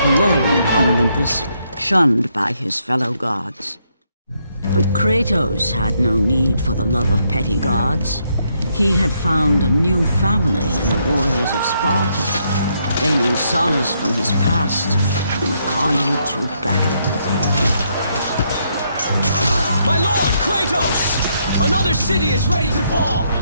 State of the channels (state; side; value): inverted; both; correlation -0.75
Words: alone on Olympus, shunned by his fellow gods. But Kratos had no need for the love of petty gods. He had found a new family in the warriors of Sparta, gaining solace from his past in the carnage of battle. My lord, Kratos! Another city is ready to fall!